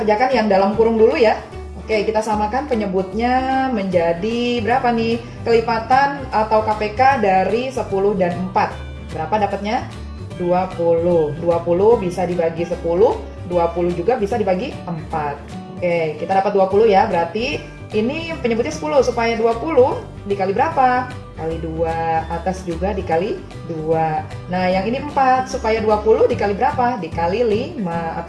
yang dalam kurung dulu ya. Oke, kita samakan penyebutnya menjadi berapa nih? Kelipatan atau KPK dari 10 dan 4. Berapa dapatnya? 20. 20 bisa dibagi 10, 20 juga bisa dibagi 4. Oke, kita dapat 20 ya, berarti ini penyebutnya 10, supaya 20 dikali berapa? Kali 2, atas juga dikali 2. Nah, yang ini 4, supaya 20 dikali berapa? Dikali 5,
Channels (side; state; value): both; identical; correlation 1.00